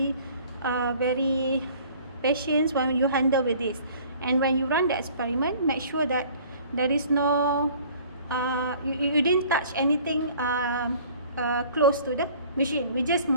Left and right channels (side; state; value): both; inverted; correlation -0.51